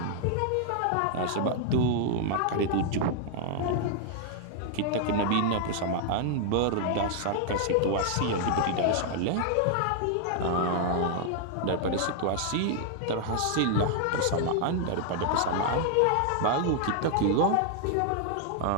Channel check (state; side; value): different; both; correlation 0.00